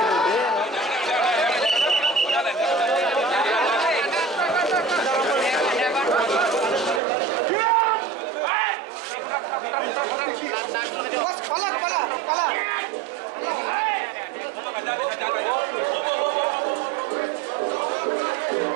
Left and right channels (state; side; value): drops out; left; at 7.0 s